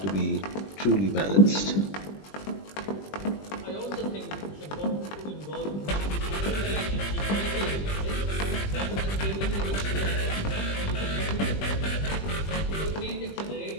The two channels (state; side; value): late; right; 20 ms